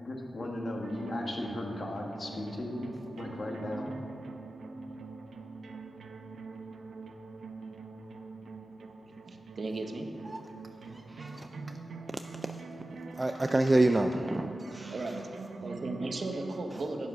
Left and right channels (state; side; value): normal; both; correlation 0.95